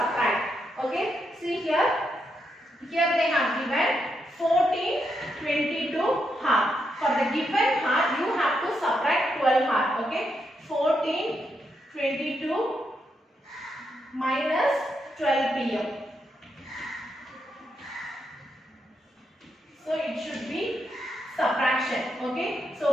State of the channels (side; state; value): both; normal; correlation 0.81